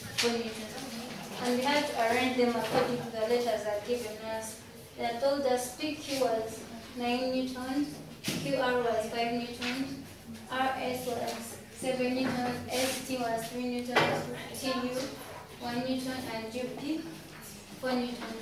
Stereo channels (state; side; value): identical; both; correlation 1.00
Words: and 4 newtons. And we had to arrange them according to the letters that are given us. They told us PQ was 9 newtons, QR was 5 newtons, RS was 7 newtons, ST was 3 newtons, TU 1 newton, and GP 4